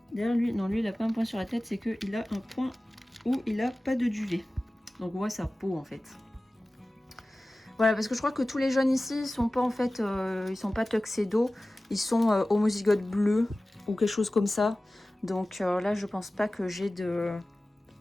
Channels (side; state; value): both; normal; correlation 0.97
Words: D'ailleurs, lui, non, lui, il a pas un point sur la tête, c'est qu'il a un point où il a pas de duvet. Donc, on voit sa peau, en fait. Voilà, parce que je crois que tous les jeunes ici, ils sont pas, en fait, ils sont pas tuxedo. Ils sont homozygote bleu ou quelque chose comme ça. Donc, là, je pense pas que j'ai de